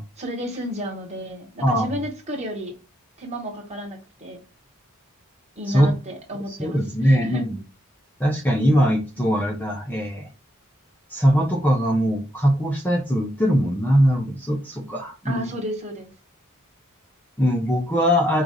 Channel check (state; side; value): normal; both; correlation 0.80